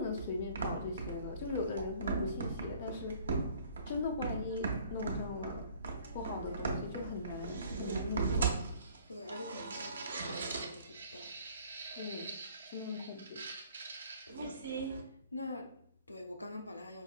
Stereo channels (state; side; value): inverted; both; correlation -0.54